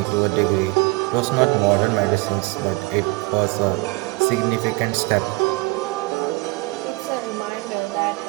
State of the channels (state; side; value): quieter; left; 24.4 dB